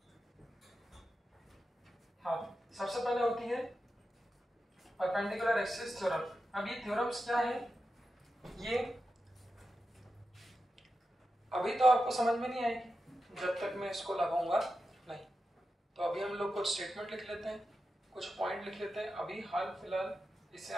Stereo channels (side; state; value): both; normal; correlation 0.90